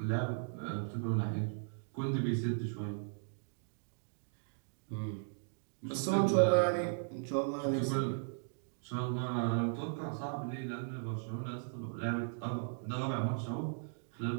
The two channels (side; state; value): left; silent; digital silence